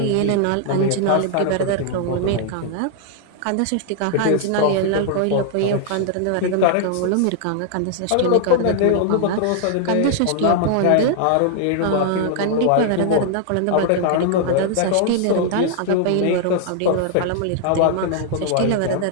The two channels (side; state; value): both; different; correlation 0.00